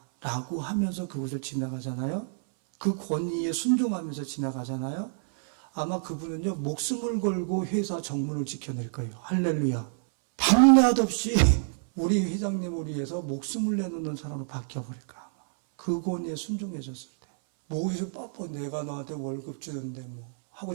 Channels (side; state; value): left; silent; 59 dB below the other